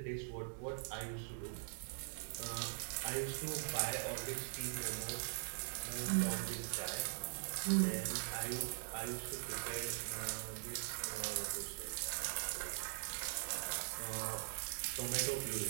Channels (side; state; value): left; silent; digital silence